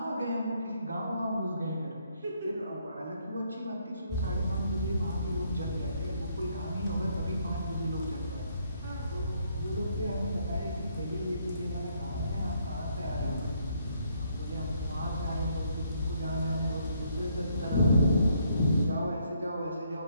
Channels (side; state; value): both; inverted; correlation -0.70